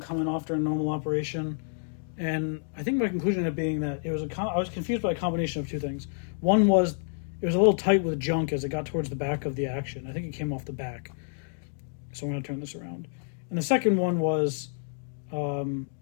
coming off during normal operation. And I think my conclusion ended up being that I was confused by a combination of two things. One was it was a little tight with junk as it got towards the back of the action. I think it came off the back. So I'm going to turn this around. And the second one was I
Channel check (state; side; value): silent; right; digital silence